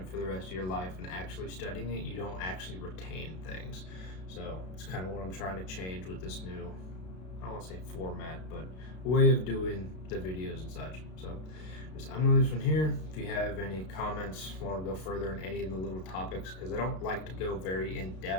for the rest of your life and actually studying it, you don't actually retain things. So it's kind of what I'm trying to change with this new, I don't want to say format, but way of doing the videos and such. So I'm going to leave this one here. If you have any comments, want to go further in any of the little topics, because I don't like to go very in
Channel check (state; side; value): late; right; 32 ms